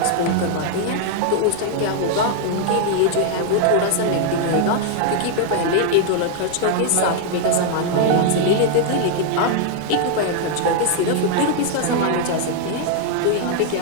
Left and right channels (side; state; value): both; different; correlation 0.00